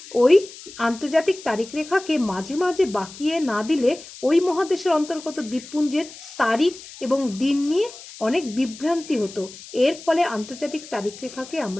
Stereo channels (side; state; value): left; noise; hiss, 16 dB below the sound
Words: ওই আন্তর্জাতিক তারিখ রেখাকে মাঝে মাঝে বাঁকিয়ে না দিলে ওই মহাদেশের অন্তর্গত দ্বীপপুঞ্জের তারিখ এবং দিন নিয়ে অনেক বিভ্রান্তি হতো। এর ফলে আন্তর্জাতিক তারিখ রেখাকে